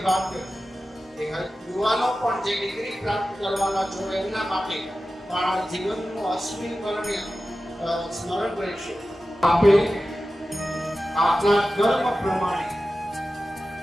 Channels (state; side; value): normal; both; correlation 0.94